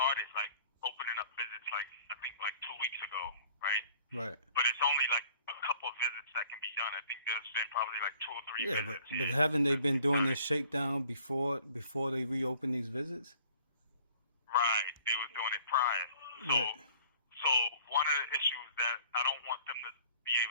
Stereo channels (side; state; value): both; inverted; correlation -0.53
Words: like opening up visits I think 2 weeks ago, right? Right. But it's only like a couple of visits that can be done. I think there's been probably like 2 or 3 visits. But haven't they been doing this shakedown before they reopen these visits? Right. They were doing it prior. So one of the issues that I don't want them to be